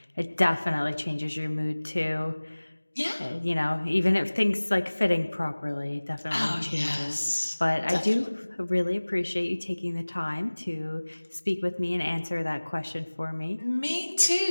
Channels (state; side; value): inverted; both; correlation -1.00